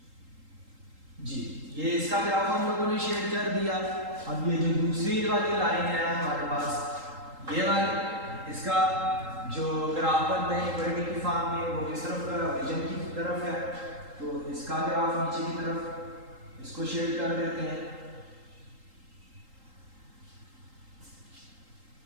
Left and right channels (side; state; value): left; late; 3.8 ms